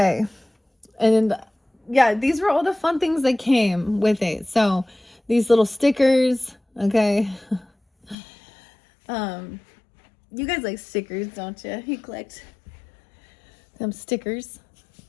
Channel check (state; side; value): drops out; right; at 8.2 s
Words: And yeah, these were all the fun things that came with it. So these little stickers, okay. You guys like stickers, don't you? You collect them stickers.